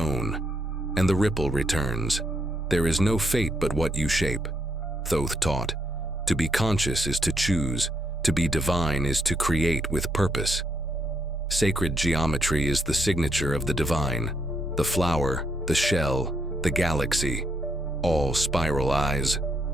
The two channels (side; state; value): both; normal; correlation 0.75